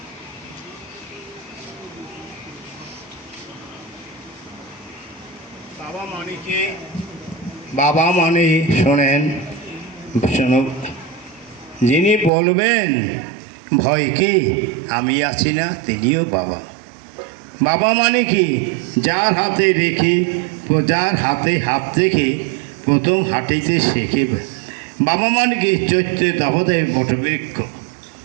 বাবা মানে কি? বাবা মানে শোনেন, শোনো, যিনি বলবেন ভয় কি আমি আছি না, তিনিও বাবা। বাবা মানে কি? যার হাতে রেখে, যার হাতে হাত রেখে প্রথম হাঁটিতে শেখে। বাবা মানে কি? চৈত্রে দাবদায় বটবৃক্ষ।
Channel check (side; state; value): left; drops out; at 12.3 s